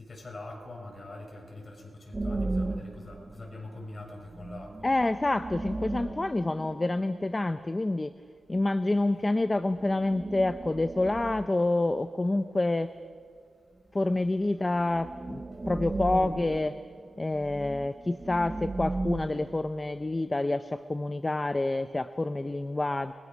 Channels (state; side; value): normal; both; correlation 0.98